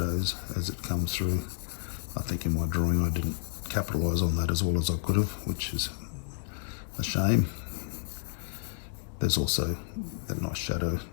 as it comes through. I think in my drawing I didn't capitalise on that as well as I could have, which is a shame. There's also that nice shadow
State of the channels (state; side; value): silent; right; 57 dB below the other